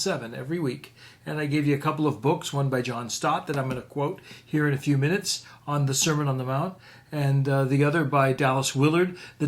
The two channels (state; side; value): identical; both; correlation 1.00